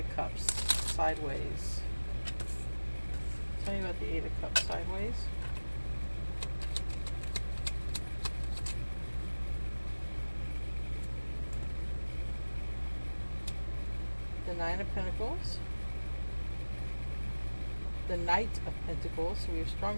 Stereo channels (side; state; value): both; inverted; correlation -1.00